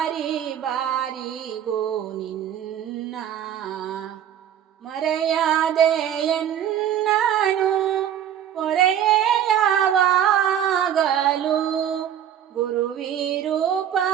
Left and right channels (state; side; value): quieter; left; 10.0 dB